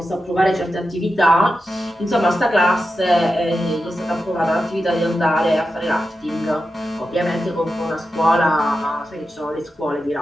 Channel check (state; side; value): normal; both; correlation 0.90